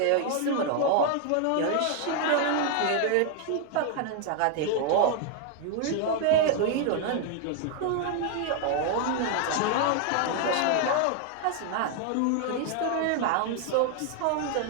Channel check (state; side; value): different; both; correlation 0.00